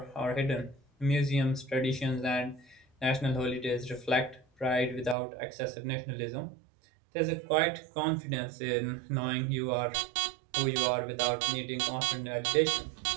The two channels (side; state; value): left; drops out; at 5.2 s